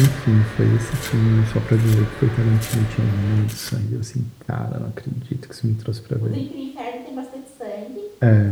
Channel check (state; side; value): identical; both; correlation 1.00